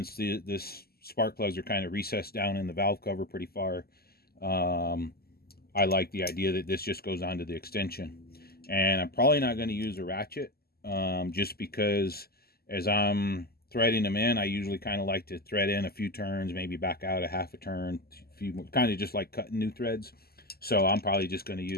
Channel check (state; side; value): late; right; 0.45 ms